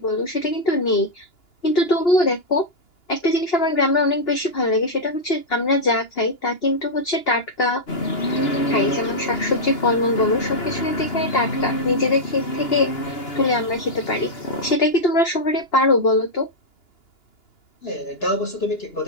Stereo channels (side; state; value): right; late; 2.9 ms